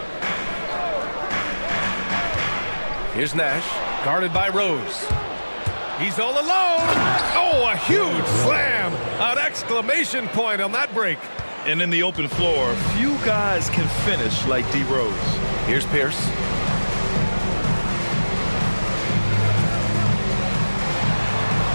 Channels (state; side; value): inverted; both; correlation -1.00